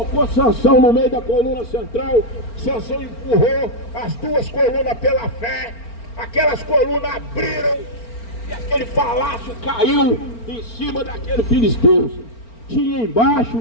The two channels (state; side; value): late; right; 4.4 ms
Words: Sansão no meio da coluna central. Sansão empurrou as 2 colunas pela fé. Aquelas colunas abriram e aquele palácio caiu em cima daquele filisteu. Tinha embaixo